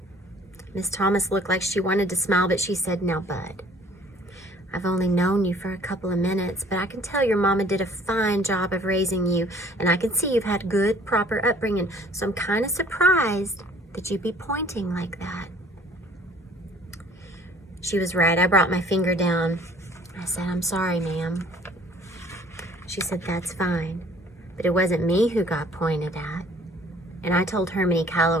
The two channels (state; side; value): normal; both; correlation 0.55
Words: Miss Thomas looked like she wanted to smile, but she said, now, Bud, I've only known you for a couple of minutes, but I can tell your mama did a fine job of raising you, and I can see you've had good, proper upbringing, so I'm kind of surprised that you'd be pointing like that. She was right. I brought my finger down. I said, I'm sorry, ma'am. She said, that's fine, but it wasn't me who got pointed at. And I told Hermione